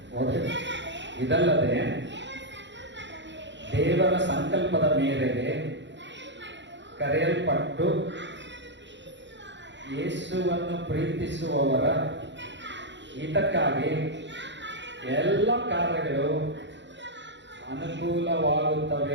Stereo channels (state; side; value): late; left; 0.53 ms